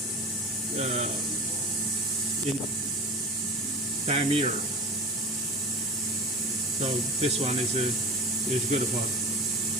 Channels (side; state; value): both; normal; correlation 0.33